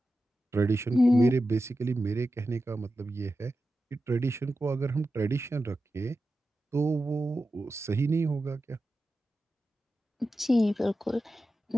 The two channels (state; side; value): normal; both; correlation 0.92